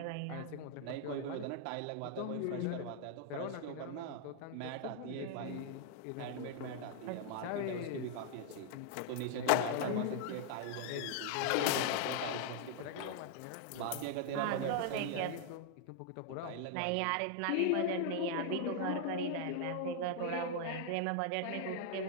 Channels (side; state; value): both; different; correlation 0.00